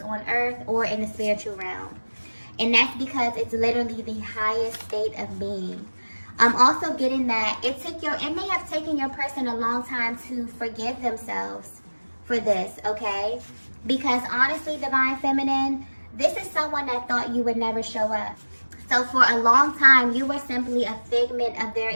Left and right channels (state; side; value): inverted; both; correlation -1.00